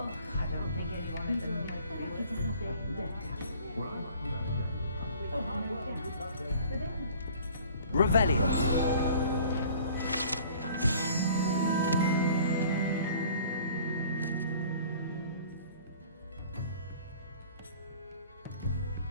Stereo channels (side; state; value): both; inverted; correlation -0.50